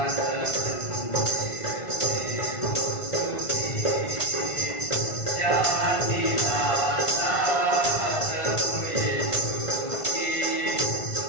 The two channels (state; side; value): late; right; 1.5 ms